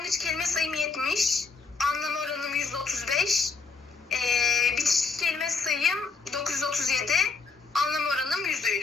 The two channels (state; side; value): quieter; right; 4.5 dB